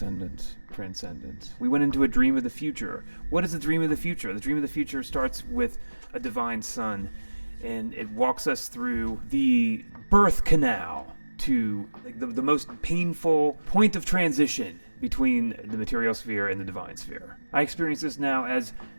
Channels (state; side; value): inverted; both; correlation -1.00